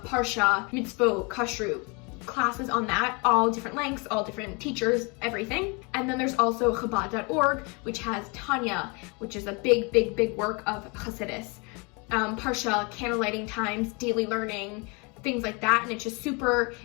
Parsha, Mitzvot, Kashrut, classes on that, all different lengths, all different teachers, everything. And then there's also Chabad.org, which has Tanya, which is a big work of Hasidus. Parsha, candlelighting times, daily learning, things like that. And it's just super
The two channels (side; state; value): right; quieter; 30.4 dB